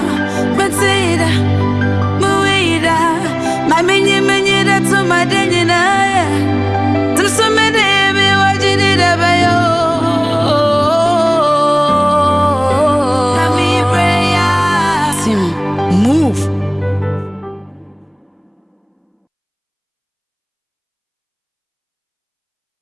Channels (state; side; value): identical; both; correlation 1.00